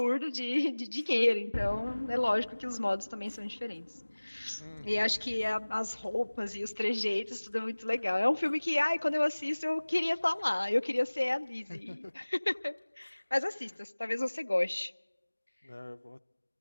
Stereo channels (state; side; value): inverted; both; correlation -1.00